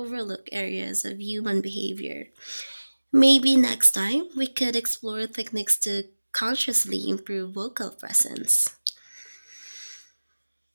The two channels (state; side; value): inverted; both; correlation -1.00